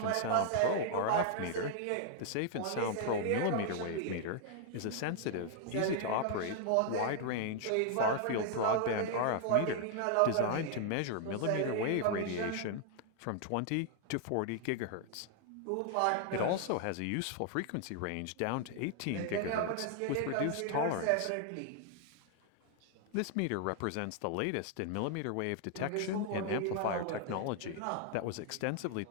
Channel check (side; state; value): both; different; correlation 0.00